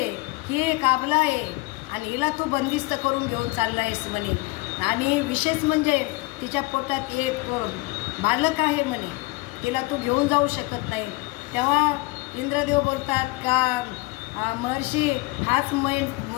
ही एक आबला आहे आणि हिला तू बंदिस्त करून घेऊन चालला आहेस म्हणे. आणि विशेष म्हणजे तिच्या पोटात एक बालक आहे म्हणे, तिला तू घेऊन जाऊ शकत नाही. तेव्हा इंद्रदेव बोलतात का महर्षी हाच मेन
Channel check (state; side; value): quieter; right; 23.1 dB